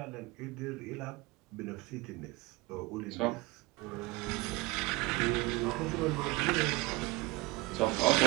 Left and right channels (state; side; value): quieter; left; 22.9 dB